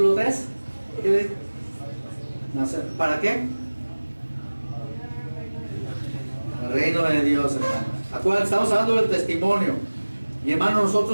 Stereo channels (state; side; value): inverted; both; correlation -1.00